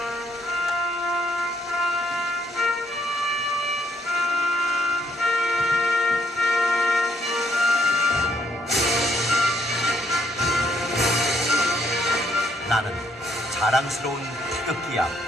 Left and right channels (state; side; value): normal; both; correlation 0.71